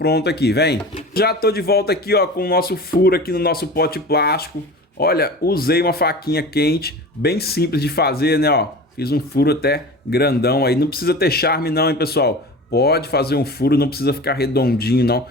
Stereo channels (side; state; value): both; normal; correlation 0.35